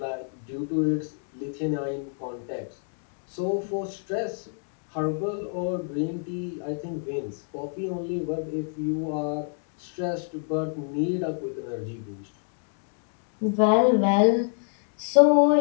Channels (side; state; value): right; silent; 57 dB below the other